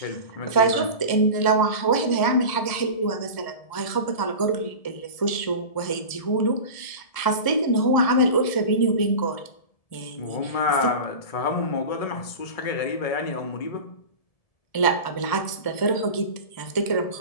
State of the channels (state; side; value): late; right; 1.7 ms